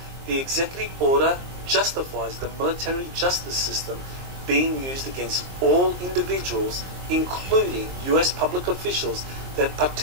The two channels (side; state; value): left; late; 22 ms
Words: the executive order justifies the military justice system being used against all individuals, including US public officials that